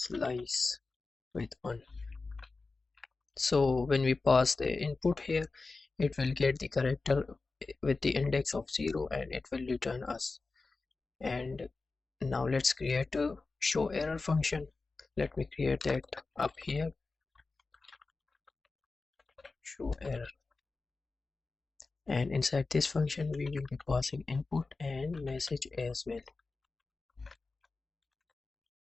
with 1. So when we pass the input here, it will get the character with the index of 0 and it will return us. And now let's create a show error function. Let me create that up here, show error. And inside this function we will be passing input and message as well.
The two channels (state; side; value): quieter; right; 3.8 dB